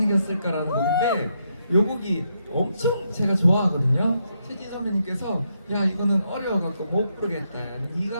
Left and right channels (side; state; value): both; inverted; correlation -0.79